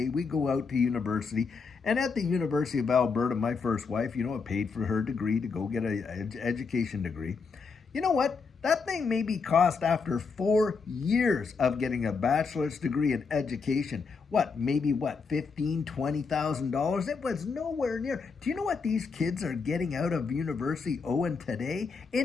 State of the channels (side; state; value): right; quieter; 5.0 dB